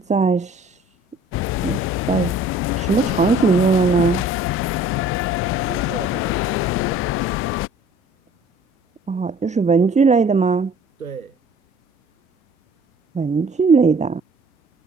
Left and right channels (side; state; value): both; normal; correlation 0.52